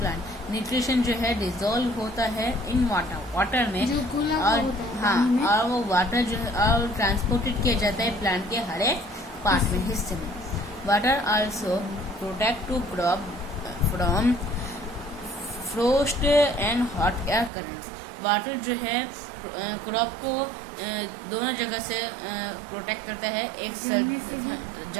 Nutrition जो है डिजॉल्व होता है इन वाटर में और हाँ, और वो वाटर जो है और ट्रांसपोर्टेड किया जाता है प्लांट के हर एक पार्ट में, हिस्से में। Water also protect to crop from frost and hot air currents. Water जो है क्रॉप को दोनों जगह से प्रोटेक्ट करता है। एक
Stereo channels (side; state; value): left; drops out; at 17.5 s